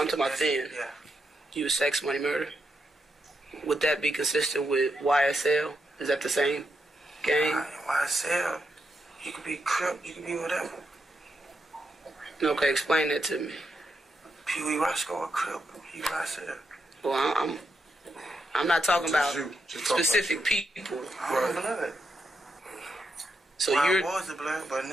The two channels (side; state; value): both; normal; correlation 0.83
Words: I'm talking about then. Yeah. You was sex, money, murder? Would that be consistent with YSL? Is that the same gang? YSL, you could be Crip, you could be whatever. Okay, explain that to me. Pee Wee Roscoe or Crip, he YSL. Well, I'm not talking about specific people. Right. Blood. So I was the blood, but